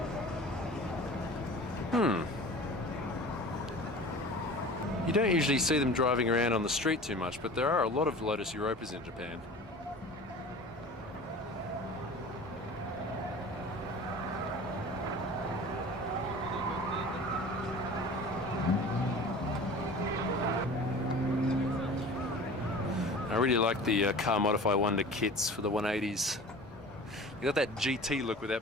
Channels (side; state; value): both; normal; correlation 0.40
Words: You don't usually see them driving around on the street too much, but there are a lot of Lotus Europas in Japan. I really like the Car Modify Wonder kits for the 180s. You got that GT look